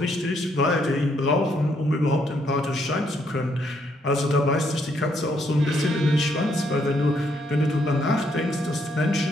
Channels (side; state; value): both; normal; correlation 0.73